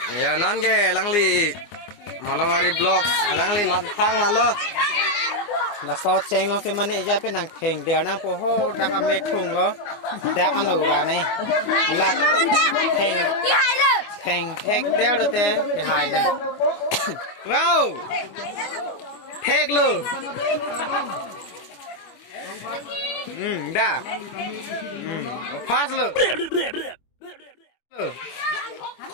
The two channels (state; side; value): late; right; 24 ms